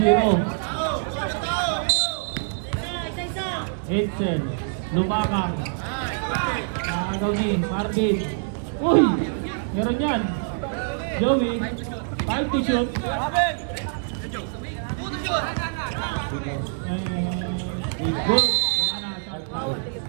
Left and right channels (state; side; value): silent; left; digital silence